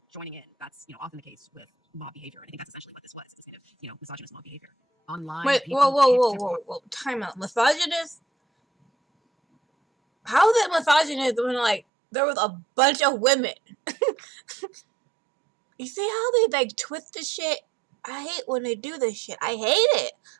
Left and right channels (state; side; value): drops out; left; at 11.8 s